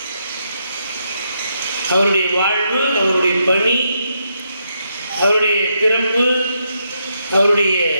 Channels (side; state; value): both; inverted; correlation -0.79